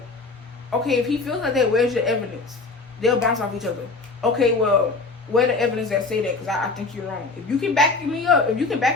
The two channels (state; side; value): quieter; right; 3.8 dB